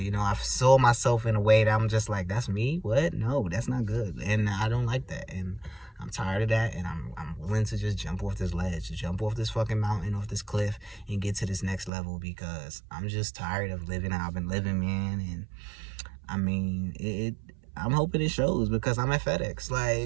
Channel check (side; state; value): left; drops out; at 11.9 s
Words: You know, I saw myself in a way that I'm just like, that's me? What? No, that's not good. And I don't like that. And I'm tired of that, and I'm willing to just jump off this ledge, jump off this fucking mountain, off this cliff, and get to this next level because I'm just tired of living how I've been living, man. And I mean, I'm hoping it shows because I'm at FedEx.